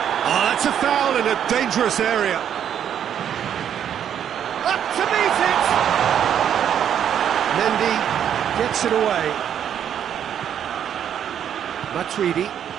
that's a foul in a dangerous area. Up to meet it! Mendy gets it away. Matuidi.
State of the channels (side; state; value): left; quieter; 9.2 dB